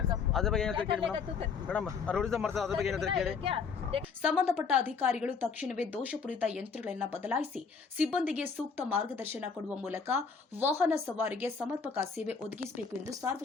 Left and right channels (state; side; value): quieter; right; 5.5 dB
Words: को? ಅದ್ರ ಬಗ್ಗೆ क्या ಏನಂತ कर ಕೇಳಿ लेगा तू ಮೇಡಮ್ ರೋಡಿಸಮ್ ಮಾಡ್ತಾರೆ ಅದ್ರ ಬಗ್ಗೆ ಏನಂತ ಕೇಳಿ क्या देख ಸಂಬಂಧಪಟ್ಟ ಅಧಿಕಾರಿಗಳು ತಕ್ಷಣವೇ ದೋಷಪೂರಿತ ಯಂತ್ರಗಳನ್ನು ಬದಲಾಯಿಸಿ ಸಿಬ್ಬಂದಿಗೆ ಸೂಕ್ತ ಮಾರ್ಗದರ್ಶನ ಕೊಡುವ ಮೂಲಕ ವಾಹನ ಸವಾರಿಗೆ ಸಮರ್ಪಕ ಸೇವೆ ಒದಗಿಸಬೇಕು ಎಂದು